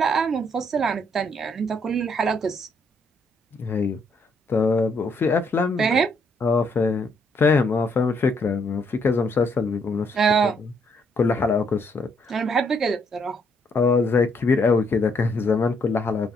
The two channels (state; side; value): normal; both; correlation 0.71